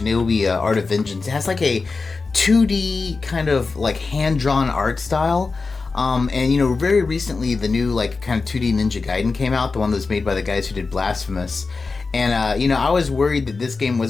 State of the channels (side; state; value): right; quieter; 4.2 dB